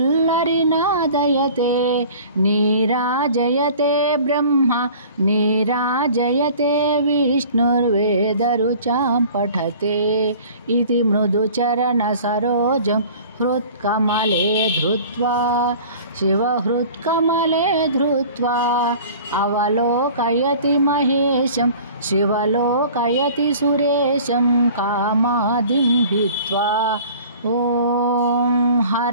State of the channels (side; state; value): both; inverted; correlation -0.45